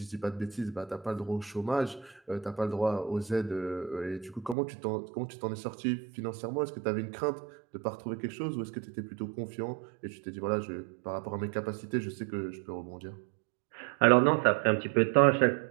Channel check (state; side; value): drops out; left; at 4.5 s